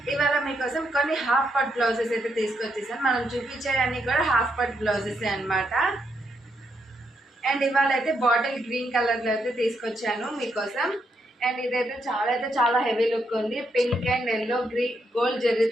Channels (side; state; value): both; normal; correlation 0.78